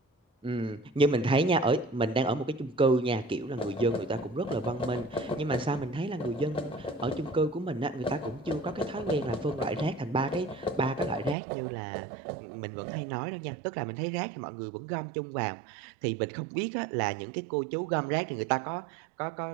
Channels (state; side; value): drops out; left; at 11.4 s